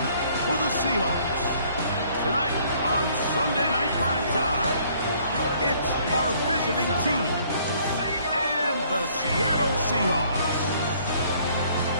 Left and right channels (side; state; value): both; inverted; correlation -0.61